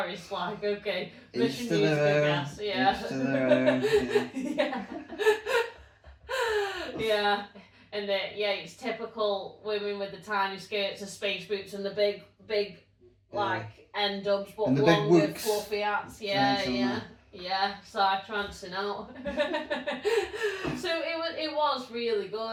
like okay, mission needs to gas. And it's typical women with the tiny skirts, the space boots, and the big like end dubs, but longer fluffy hats. Side trancing out. So it was really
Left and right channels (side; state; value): both; identical; correlation 1.00